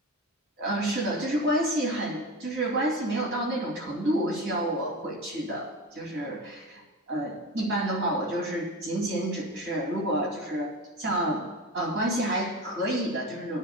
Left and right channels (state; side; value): normal; both; correlation 0.27